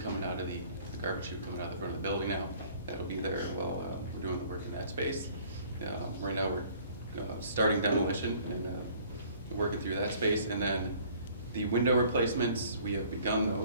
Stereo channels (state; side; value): inverted; both; correlation -0.55